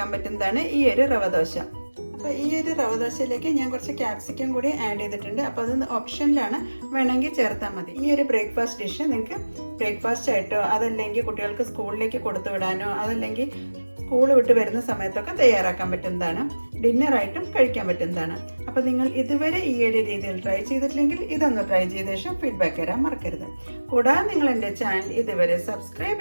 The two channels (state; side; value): inverted; both; correlation -1.00